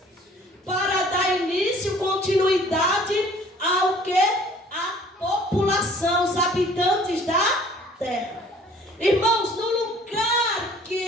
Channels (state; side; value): normal; both; correlation 0.53